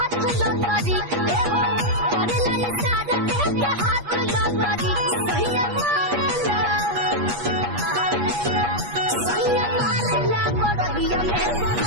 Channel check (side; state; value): left; late; 8.4 ms